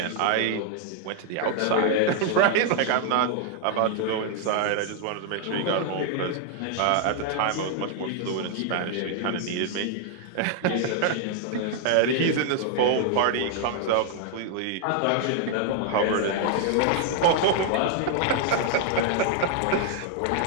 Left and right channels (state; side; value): different; both; correlation 0.00